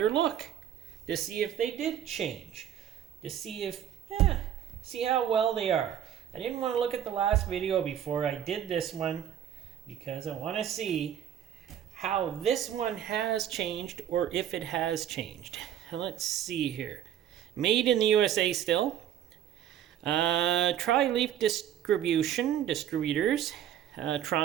look to see if they did change, to see if, see how well they are. I didn't want to look at the last video before I did this one because I want to see how this one has changed or if it has changed. Let's see here. Made in the USA still. Tri-Leaf Distributors,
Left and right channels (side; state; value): left; quieter; 10.2 dB